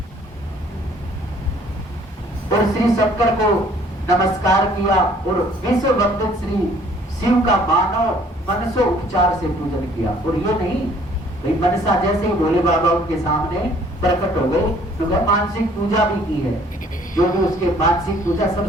और श्री शंकर को नमस्कार किया और विश्व वंदित श्री शिव का मानव मनसो उपचार से पूजन किया। और ये नहीं भाई मनसा जैसे ही भोले बाबा उनके सामने प्रकट हो गए तो मानसिक पूजा भी की है, जो भी उसके मानसिक पूजा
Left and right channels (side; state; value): both; normal; correlation 0.58